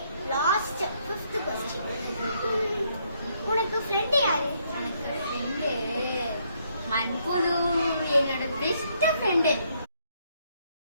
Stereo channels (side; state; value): both; inverted; correlation -0.72